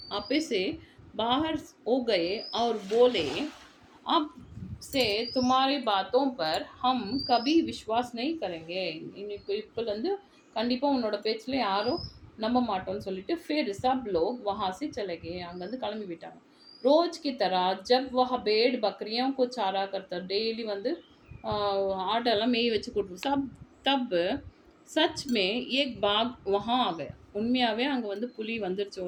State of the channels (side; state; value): both; identical; correlation 1.00